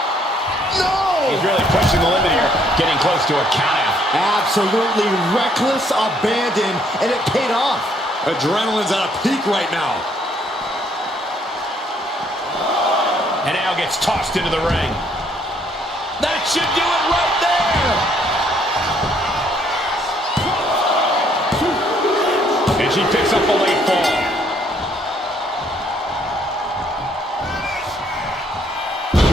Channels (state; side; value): normal; both; correlation 0.67